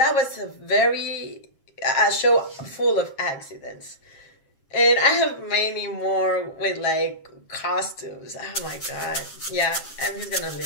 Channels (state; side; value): late; right; 7.4 ms